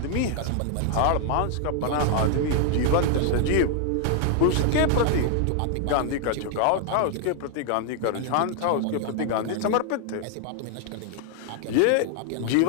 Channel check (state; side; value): different; both; correlation 0.00